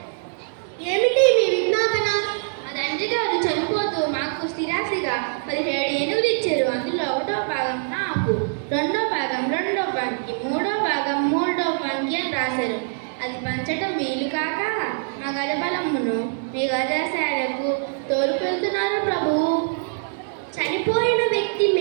ఏమిటి మీ విజ్ఞాపన? మా తండ్రి గారు చనిపోతూ మాకు స్థిరాస్తిగా 17 ఏనుగులు ఇచ్చారు. అందులో 1వ భాగం నాకు, 2వ భాగం 2వ పానికి, 3వ భాగం 3వ పానికి అని రాశారు. అది పంచటం వీలు కాక మా గజబలమును మీ గజశాలకు తోలుకెళ్తున్నారు ప్రభు. చనిపోయిన వ్యక్తి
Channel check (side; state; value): left; silent; digital silence